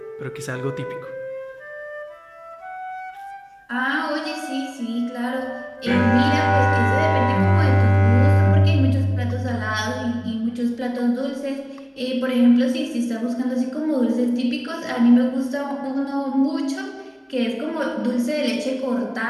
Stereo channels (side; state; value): both; identical; correlation 1.00